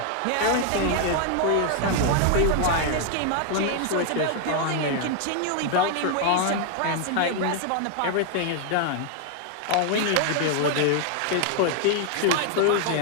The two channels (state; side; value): different; both; correlation 0.00